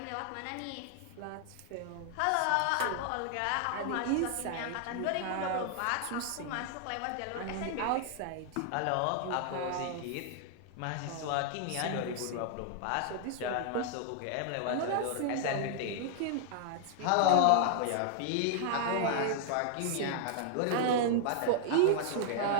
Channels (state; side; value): different; both; correlation 0.00